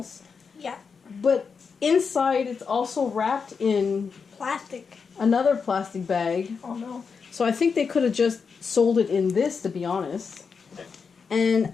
Yeah. But inside it's also wrapped in Plastic. another plastic bag. Oh no. So I think they could have just sold it in this, to be honest. And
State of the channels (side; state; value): right; quieter; 5.6 dB